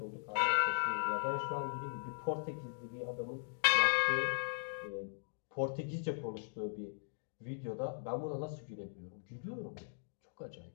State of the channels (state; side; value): silent; right; digital silence